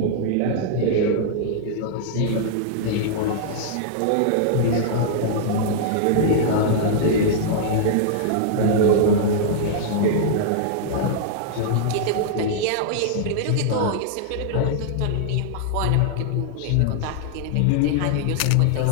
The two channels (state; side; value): different; both; correlation -0.01